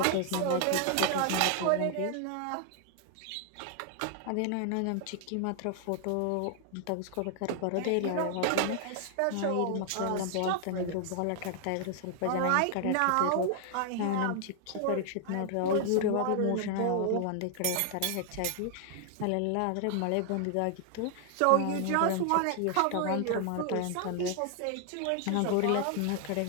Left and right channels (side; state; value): both; different; correlation 0.00